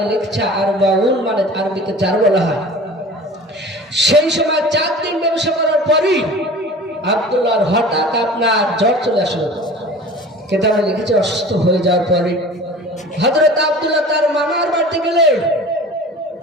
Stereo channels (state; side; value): normal; both; correlation 0.40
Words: লিখছে আরবাউন, মানে আরবিতে 4 বলা হয়। সেই সময় 4 দিন ব্যবসা করার পরই আব্দুল্লাহর হঠাৎ আপনার জ্বর চলে আসলো। কিতাবে লিখেছে অসুস্থ হয়ে যাওয়ার পরে হযরত আব্দুল্লাহ তার মামার বাড়িতে গেলেন।